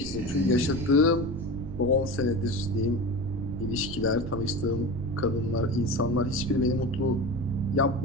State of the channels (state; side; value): noise; right; rumble, 9 dB below the sound